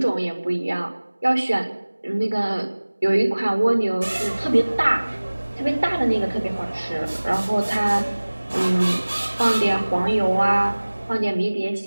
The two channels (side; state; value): both; inverted; correlation -1.00